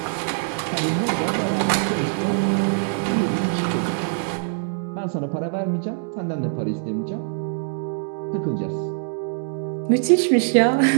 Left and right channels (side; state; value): left; silent; digital silence